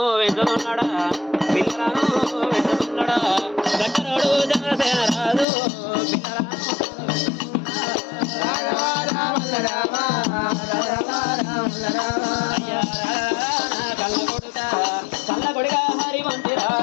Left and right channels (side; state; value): right; drops out; at 5.5 s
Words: వెంచుతున్నాడా పిల్లలను వెంచుతున్నాడా గట్టరోడు చంద్రసేన రాదు కళ్ళ కొడుక హరివంతి